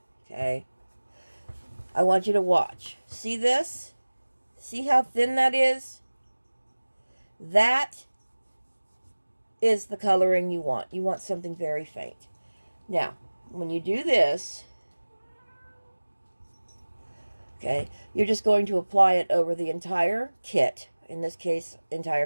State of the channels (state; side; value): inverted; both; correlation -1.00